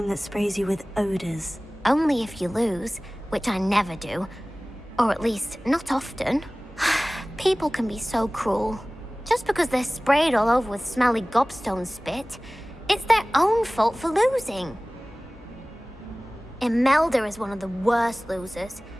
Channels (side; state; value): both; normal; correlation 0.98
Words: that sprays you with odors. Only if you lose, which I never do. Or at least, not often. People can be so cruel. Just because they're sprayed all over with smelly gobstone spit, it's their own fault for losing. Imelda is one of the worst losers.